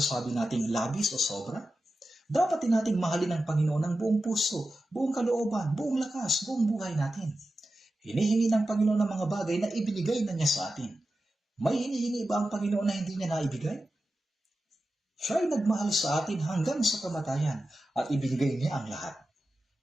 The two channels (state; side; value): normal; both; correlation 0.92